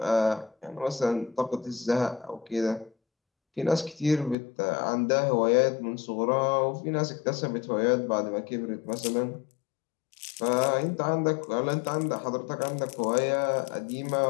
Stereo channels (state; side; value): drops out; right; at 4.4 s